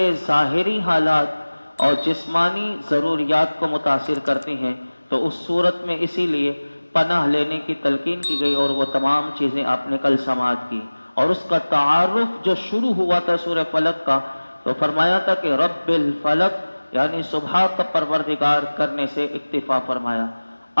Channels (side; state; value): both; inverted; correlation -1.00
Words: ظاہری حالات اور جسمانی ضروریات کو متاثر کرتی ہیں، تو اس صورت میں اسی لیے پناہ لینے کی تلقین کی گئی، اور وہ تمام چیزیں آپ نے کل سماعت کی۔ اور اس کا تعارف جو شروع ہوا تھا سورہ فلق کا، تو فرمایا تھا کہ رب الفلق، یعنی صبح کا پروردگار کرنے سے اکتفا فرمایا۔